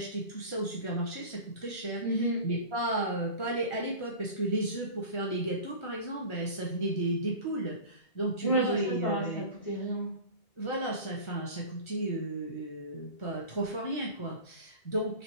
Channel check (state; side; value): late; right; 1.3 ms